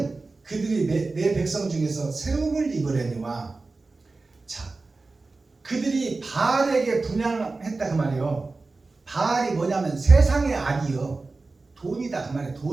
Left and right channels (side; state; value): left; quieter; 3.6 dB